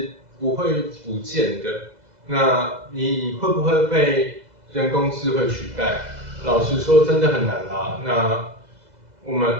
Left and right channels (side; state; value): left; late; 2.0 ms